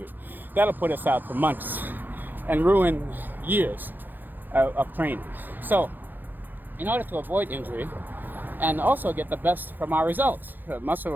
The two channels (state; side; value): late; left; 0.089 ms